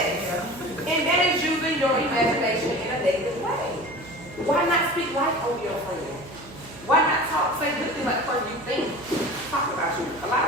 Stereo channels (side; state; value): right; noise; hum, 18 dB below the sound